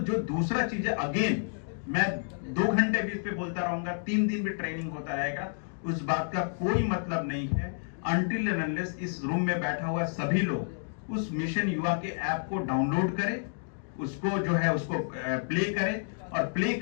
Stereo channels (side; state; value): right; silent; digital silence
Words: जो दूसरा चीज है, अगेन मैं 2 घंटे भी इस पे बोलता रहूंगा, 3 दिन भी ट्रेनिंग होता रहेगा, उस बात का कोई मतलब नहीं है अनटिल एंड अनलेस इस रूम में बैठा हुआ सभी लोग उस मिशन युवा के ऐप को डाउनलोड करें, उसको जो है उसको प्ले करें, और प्ले